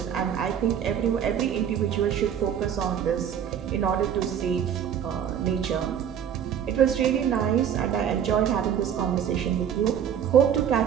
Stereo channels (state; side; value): quieter; left; 8.9 dB